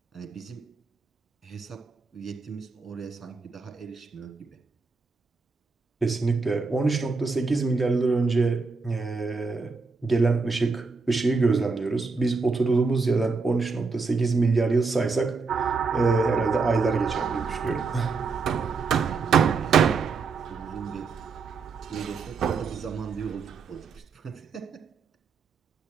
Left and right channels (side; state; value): left; quieter; 4.4 dB